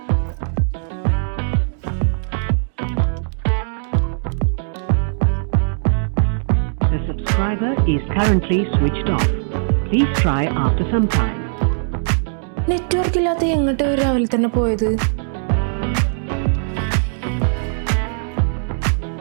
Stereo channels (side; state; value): left; silent; digital silence